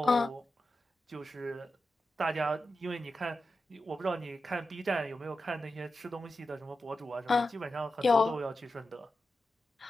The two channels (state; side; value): normal; both; correlation 0.91